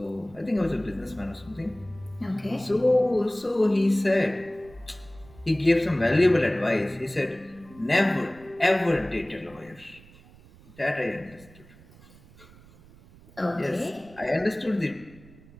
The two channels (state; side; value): noise; right; rumble, 24 dB below the sound